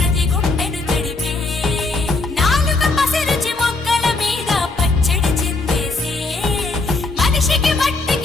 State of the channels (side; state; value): right; quieter; 3.5 dB